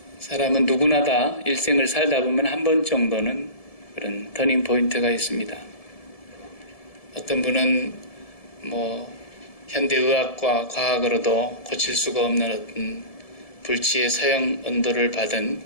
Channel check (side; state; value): right; late; 1.7 ms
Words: 사람은 누구나 다 일생을 살다 보면 한 번 정도는 그런 터닝 포인트가 있습니다. 어떤 분은 현대의학과 과학으로도 고칠 수가 없는 어떤 불치의 서형 언도를 받은